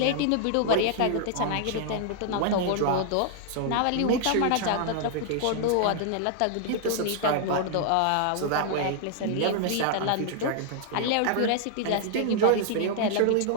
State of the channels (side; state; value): both; different; correlation 0.00